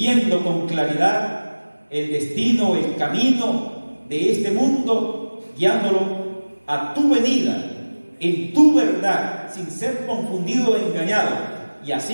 con claridad el destino, el camino de este mundo, guiándolo a tu venida, en tu verdad, sin ser confundido o engañado, y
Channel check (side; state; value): both; inverted; correlation -1.00